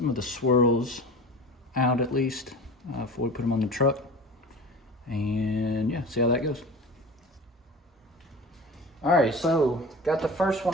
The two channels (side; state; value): both; normal; correlation 0.36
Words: of the swirls out at least before we put them on the truck. And yeah, see how that goes. All right, so got the first